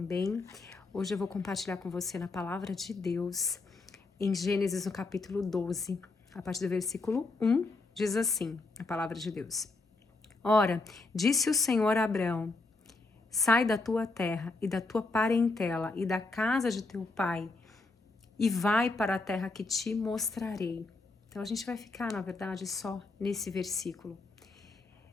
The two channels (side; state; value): right; quieter; 3.4 dB